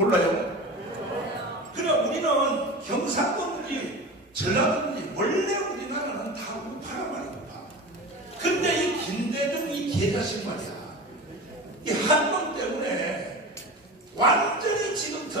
그래 우리는 경상도든지 전라도든지 원래 우리나라는 다 우파란 말이야. 우파. 근데 이 김대중 이 개자식 말이야. 이 한 놈 때문에 완전히 지금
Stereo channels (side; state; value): both; normal; correlation 0.30